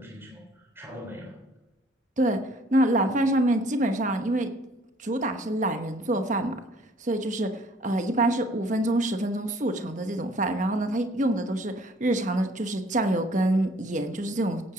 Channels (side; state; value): both; normal; correlation 0.58